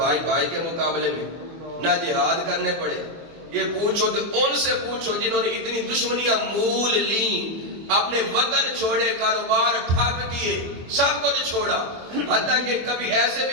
بھائی کے مقابلے میں، نہ جہاد کرنے پڑے۔ یہ پوچھو تو ان سے پوچھو جنہوں نے اتنی دشمنیاں مول لیں، اپنے وطن چھوڑے، کاروبار ٹھپ کیے، سب کچھ چھوڑا، حتیٰ کہ کبھی ایسے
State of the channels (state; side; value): late; left; 24 ms